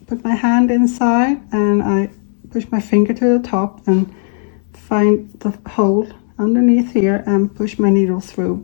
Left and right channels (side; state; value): right; silent; 69 dB below the other